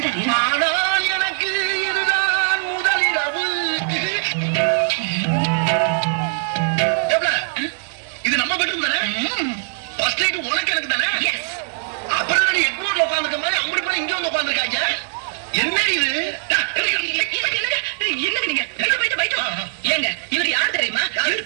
எனக்கு இதுதான் முதலிரவு. இது நம்ம பெட்ரூம் தானே? ஃபர்ஸ்ட் நைட் உனக்கு எனக்கு தானே? அப்புறம் நான் எக்மோர்ல உட்கார்ந்துக்க மாதிரி அப்படி போய் இங்க வந்து உட்கார்ந்துருக்காங்க. என்ன இது? என்னங்க நீங்க போயிட்டு போயிட்டு ஏங்க இவர் யார் தெரியுமா?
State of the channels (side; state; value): left; silent; digital silence